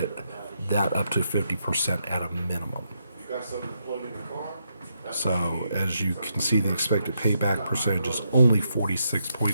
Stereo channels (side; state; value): both; inverted; correlation -0.80